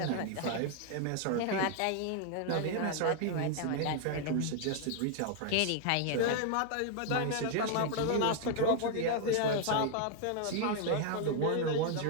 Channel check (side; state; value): both; different; correlation 0.00